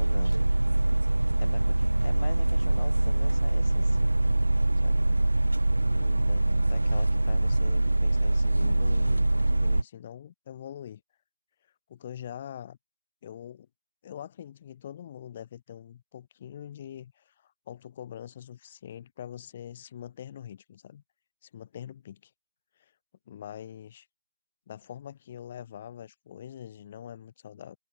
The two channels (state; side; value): inverted; both; correlation -0.99